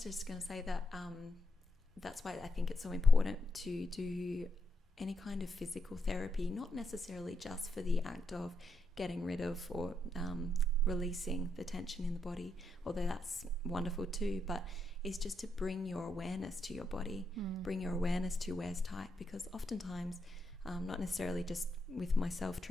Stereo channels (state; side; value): normal; both; correlation 0.81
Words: just going to say that that's why I think it's so important to do any kind of physical therapy, not necessarily just for the act of getting rid of or releasing the tension in the body, although that's wonderful too, but it's just to bring your awareness to your body, bring your awareness to where's tight, because oftentimes, not necessarily just with myself